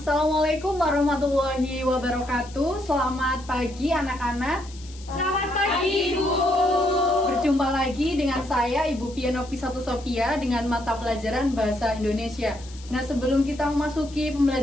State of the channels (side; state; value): left; noise; hiss, 20 dB below the sound